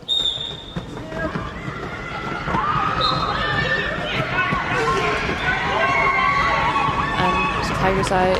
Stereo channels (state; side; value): identical; both; correlation 1.00